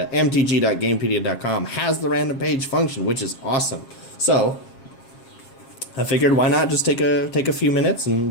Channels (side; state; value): right; late; 7.4 ms